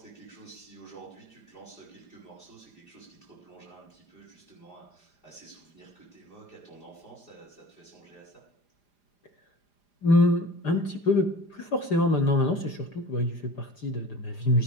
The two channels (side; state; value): right; late; 4.9 ms